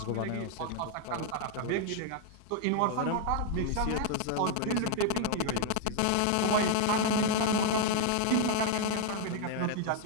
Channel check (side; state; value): both; different; correlation 0.00